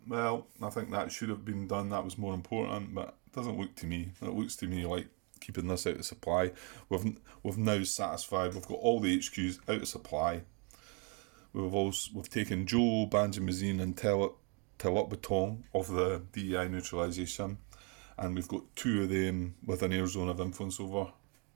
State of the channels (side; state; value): left; quieter; 34.4 dB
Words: well, I think that should have been done, that was more important, but it doesn't look to me. It looks to me like keeping this out of supply. We've now satisfied. We've got all the HQs out of supply. We've taken Joe, Banjamazine and Telot of the DEI neutralisation, and we've got 2 of them with an air zone of influence over.